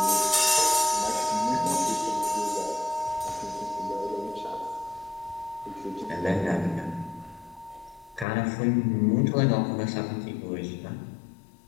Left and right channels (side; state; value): right; drops out; at 8.2 s